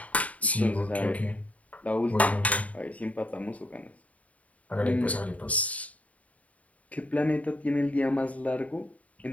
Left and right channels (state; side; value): late; right; 0.069 ms